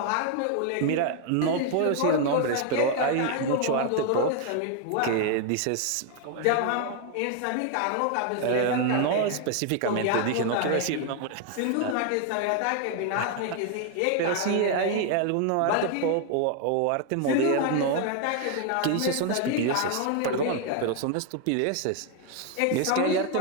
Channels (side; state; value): both; different; correlation 0.00